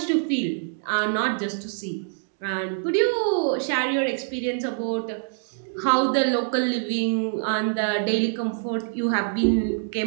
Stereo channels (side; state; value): left; silent; 62 dB below the other